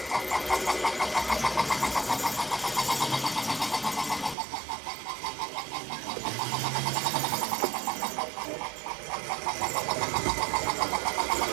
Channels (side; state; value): left; drops out; at 4.4 s